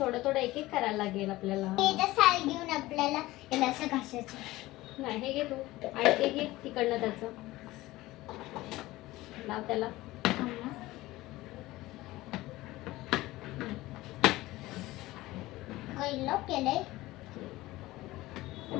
थोडं एक एक करायला लागेल आपल्याला. हे तर साल घेऊन आपल्याला याला असं घासायचं. नाही हे घे तू आणि ते घे तिकडनं त्याचं लाव त्याला. पहिलं केलंय.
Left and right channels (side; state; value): right; quieter; 18.2 dB